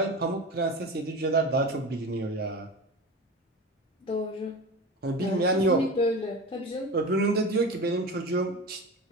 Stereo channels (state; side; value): normal; both; correlation 0.29